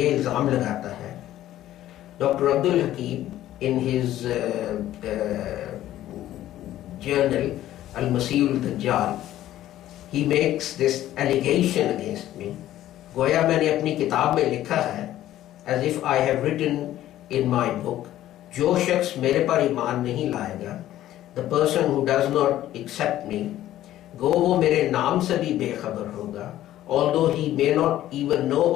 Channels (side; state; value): right; quieter; 13.4 dB